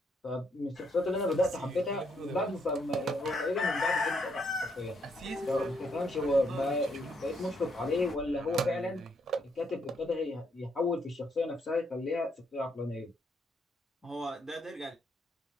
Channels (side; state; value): both; normal; correlation 0.74